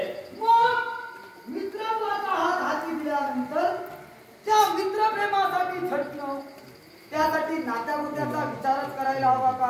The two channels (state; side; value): identical; both; correlation 1.00